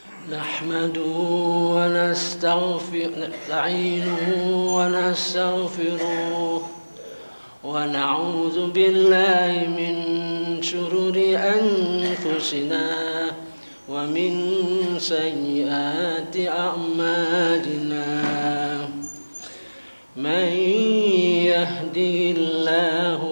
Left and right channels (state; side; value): inverted; both; correlation -1.00